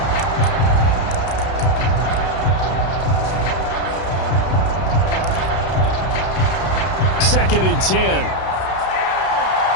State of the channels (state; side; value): late; right; 32 ms